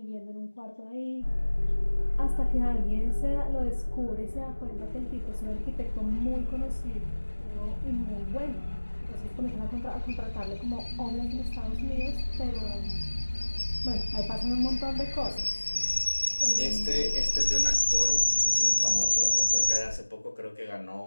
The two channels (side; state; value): both; inverted; correlation -1.00